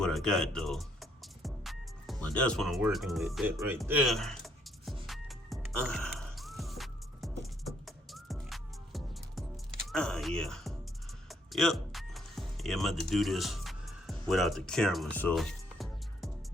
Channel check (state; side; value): normal; both; correlation 0.69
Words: I got though. But that's what I'm working with, that right there. Yeah. Yep. Yeah, I'm about to do this without the camera, so.